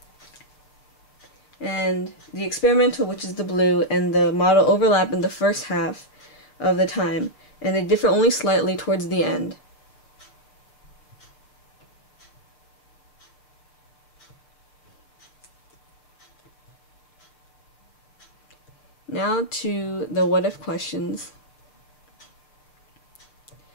And the experimental, which is the blue, and the model overlap in the first half of the time, and they differ only slightly towards the end. Now to the what-if questions.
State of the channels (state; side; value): late; right; 6.7 ms